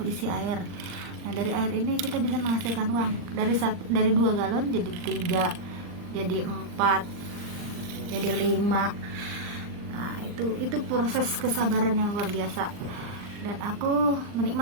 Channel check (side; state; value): left; late; 39 ms